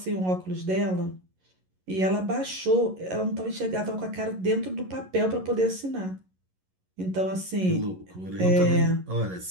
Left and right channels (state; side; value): late; left; 11 ms